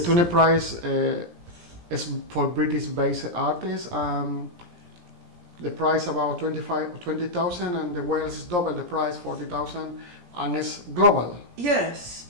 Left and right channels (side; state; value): left; late; 17 ms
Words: Tune Prize is for British-based artists. The price about 20,000, and the Wales is double the price, 40,000, and it's global. Yes,